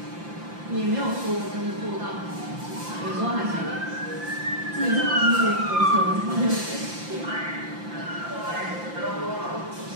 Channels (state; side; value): late; left; 5.8 ms